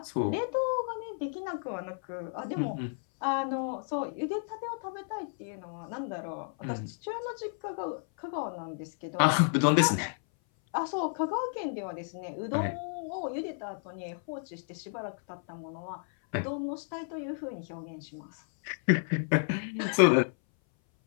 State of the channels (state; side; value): silent; right; 57 dB below the other